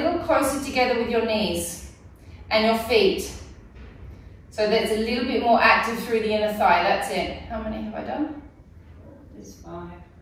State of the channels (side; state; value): both; identical; correlation 1.00